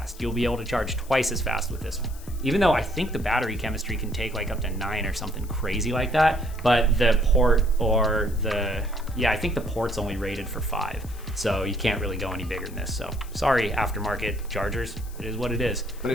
You'll be able to charge twice as fast with this one. Even though I think the battery chemistry can take like up to 9 or something crazy like that, but the port or I think the port's only rated for 5. So you can't really go any bigger than this. So sorry, aftermarket chargers, it is what it is. But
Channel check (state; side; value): noise; left; hiss, 20 dB below the sound